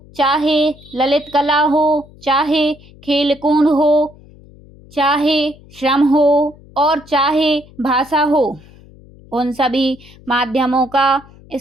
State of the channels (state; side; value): noise; left; hum, 24 dB below the sound